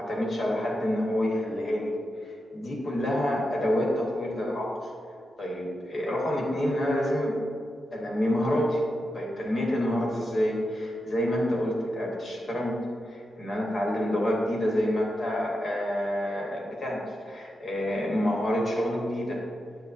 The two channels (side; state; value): both; normal; correlation 0.88